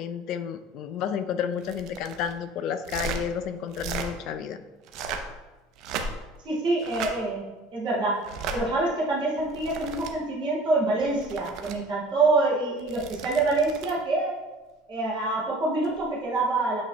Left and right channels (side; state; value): both; normal; correlation 0.45